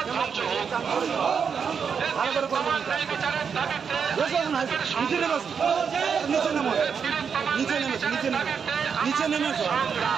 ধ্বংস হোক। এই তিলোত্তমার ন্যায় বিচারের দাবিতে আইএসএফের সংগ্রাম। তিলোত্তমার ন্যায় বিচারের দাবিতে আমাদের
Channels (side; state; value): left; quieter; 6.5 dB